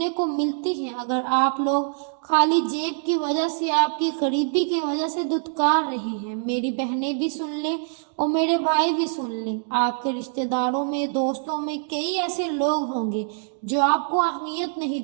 کو ملتی ہیں، اگر آپ لوگ خالی جیب کی وجہ سے، آپ کی غریبی کی وجہ سے دھتکار رہے ہیں، میری بہنیں بھی سن لیں اور میرے بھائی بھی سن لیں، آپ کے رشتہ داروں میں، دوستوں میں کئی ایسے لوگ ہوں گے جو آپ کو اہمیت نہیں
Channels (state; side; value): silent; left; digital silence